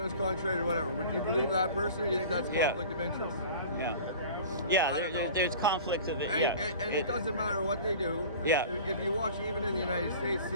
was contrary to whatever, would you believe that person, or do you think that's conflict of interest? There's conflicts of it. And it doesn't matter what they do. If you watch even in the United States,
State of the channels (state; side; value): inverted; both; correlation -0.40